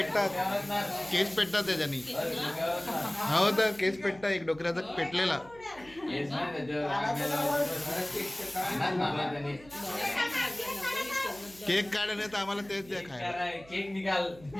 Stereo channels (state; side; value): noise; right; hum, 22 dB below the sound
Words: त्याच्यानी. हो तर केस पेटतात, एक डोक्याचा पेटलेला. केक काढ नाही तर आम्हाला तेच द्या खायला. केक निकाल